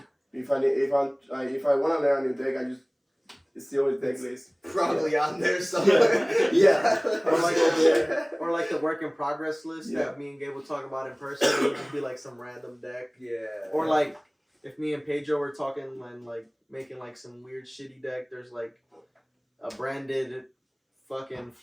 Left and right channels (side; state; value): both; identical; correlation 1.00